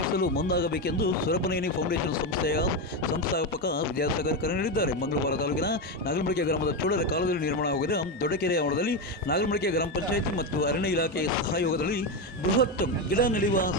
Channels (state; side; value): normal; both; correlation 0.12